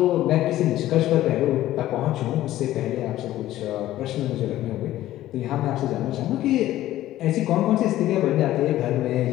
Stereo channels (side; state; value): right; quieter; 14.4 dB